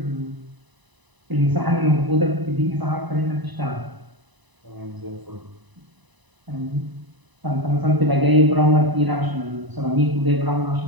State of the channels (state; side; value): late; left; 1.0 ms